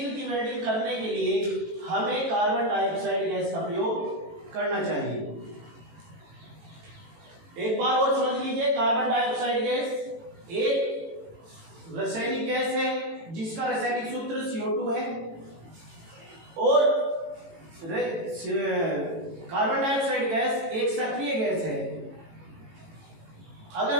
की वेल्डिंग करने के लिए हमें कार्बन डाइऑक्साइड गैस का प्रयोग करना चाहिए। एक बार और समझ लीजिए, कार्बन डाइऑक्साइड गैस एक रासायनिक गैस है जिसका रासायनिक सूत्र CO2 है, और कार्बन डाइऑक्साइड गैस एक सक्रिय गैस है। अगर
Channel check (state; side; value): late; left; 18 ms